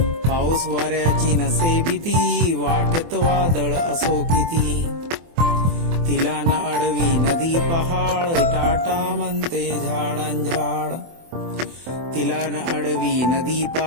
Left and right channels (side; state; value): left; late; 24 ms